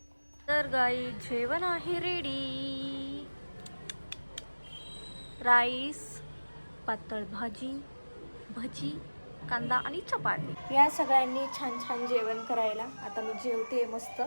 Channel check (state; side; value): inverted; both; correlation -1.00